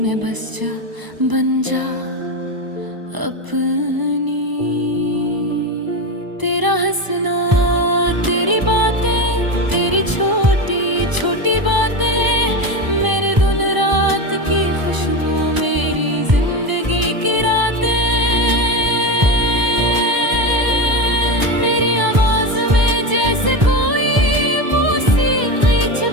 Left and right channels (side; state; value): left; late; 1.0 ms